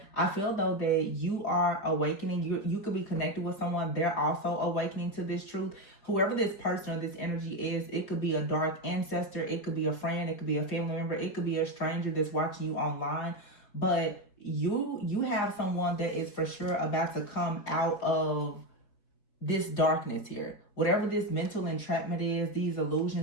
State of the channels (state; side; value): late; right; 4.6 ms